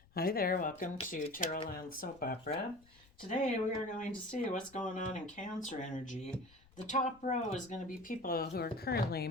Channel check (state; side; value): noise; left; rumble, 27 dB below the sound